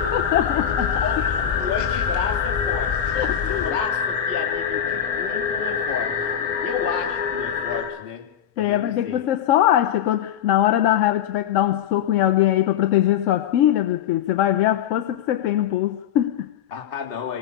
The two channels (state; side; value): quieter; right; 9.7 dB